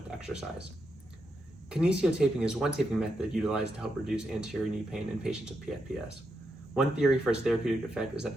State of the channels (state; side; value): normal; both; correlation 0.83